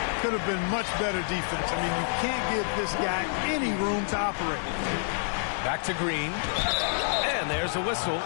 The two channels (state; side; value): silent; right; digital silence